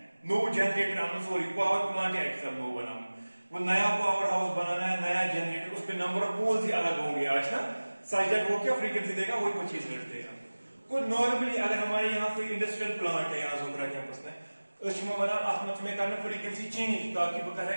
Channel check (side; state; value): both; inverted; correlation -1.00